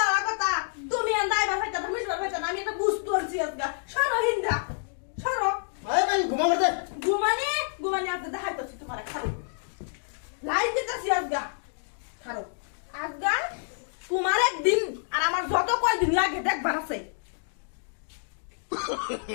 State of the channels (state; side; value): silent; right; digital silence